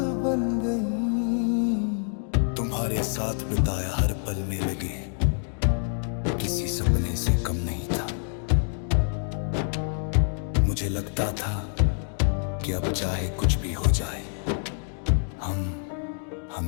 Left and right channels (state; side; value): silent; right; 60 dB below the other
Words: बन गई। तुम्हारे साथ बिताया हर पल में लगे किसी सपने से कम नहीं था। मुझे लगता था कि अब चाहे कुछ भी हो जाए हम